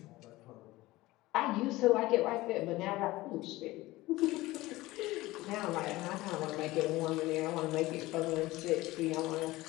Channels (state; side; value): quieter; right; 18.8 dB